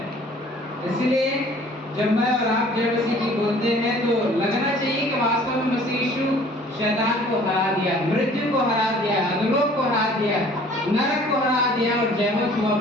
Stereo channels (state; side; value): normal; both; correlation 0.52